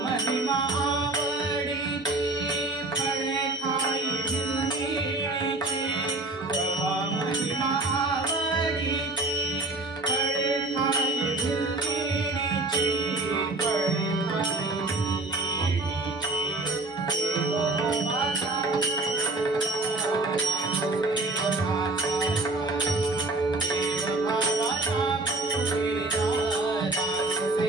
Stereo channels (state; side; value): quieter; left; 3.0 dB